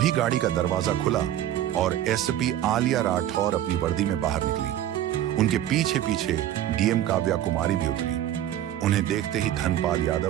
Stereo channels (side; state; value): left; quieter; 12.0 dB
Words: गाड़ी का दरवाजा खुला और एसपी आलिया राठौर अपनी वर्दी में बाहर निकली। उनके पीछे पीछे डीएम काव्या कुमारी भी उतरी। उन्हें देखते ही धनपाल